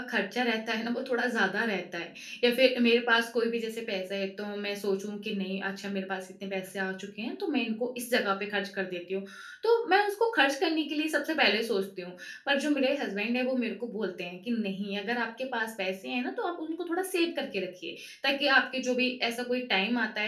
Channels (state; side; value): identical; both; correlation 1.00